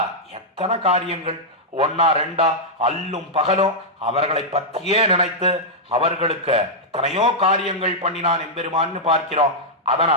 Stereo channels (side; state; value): both; normal; correlation -0.06